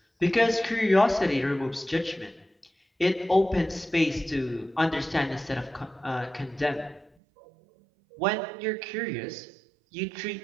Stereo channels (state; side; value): drops out; left; at 7.1 s